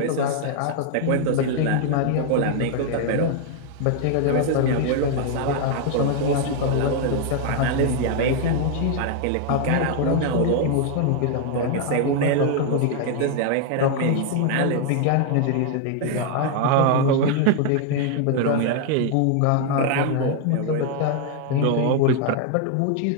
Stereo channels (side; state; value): both; different; correlation 0.00